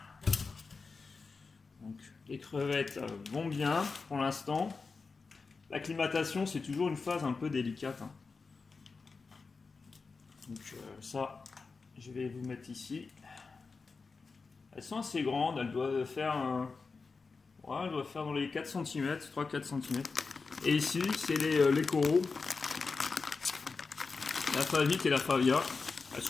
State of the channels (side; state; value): right; quieter; 4.4 dB